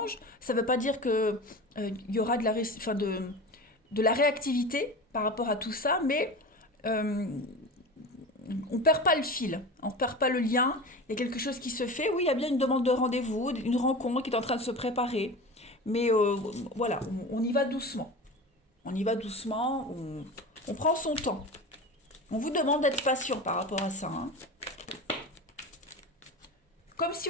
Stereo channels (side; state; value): both; normal; correlation 0.31